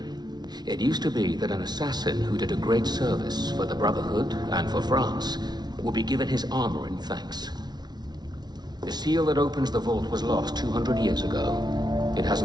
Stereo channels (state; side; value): late; left; 0.20 ms